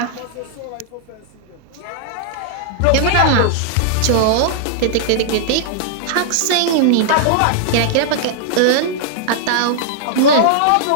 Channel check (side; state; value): both; different; correlation -0.01